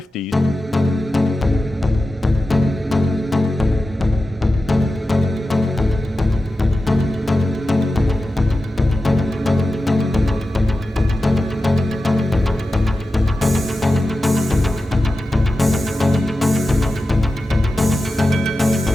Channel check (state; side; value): normal; both; correlation 0.93